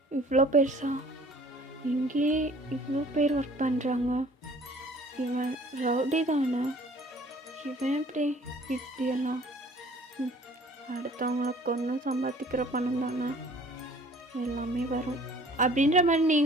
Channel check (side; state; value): both; normal; correlation 0.52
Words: இவ்வளோ பெருசா, இங்கேயே இவ்வளோ பேர் ஒர்க் பண்ணுறாங்க, இவன் ரவுடி தானே, இவன் இப்படியெல்லாம் அடுத்தவங்கள கொன்று சம்பாதிக்கிற பணம் தானே எல்லாமே வரும் அப்படின்ற மாதிரி